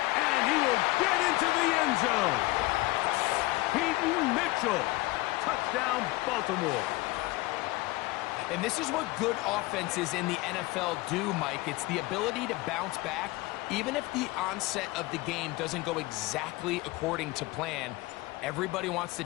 And he will get into the end zone. Peyton Mitchell. Touchdown, Baltimore. And this is what good offenses in the NFL do, Mike. It's the ability to bounce back, even if the onset of the game doesn't go exactly according to plan. Everybody wants to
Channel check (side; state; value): right; quieter; 20.8 dB